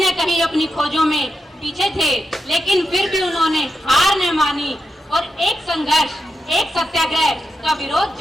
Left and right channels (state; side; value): normal; both; correlation 0.87